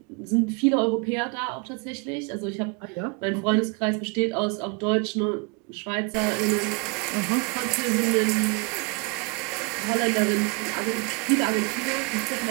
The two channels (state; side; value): quieter; left; 31.7 dB